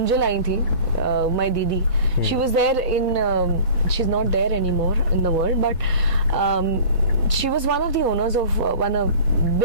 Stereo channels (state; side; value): inverted; both; correlation -0.41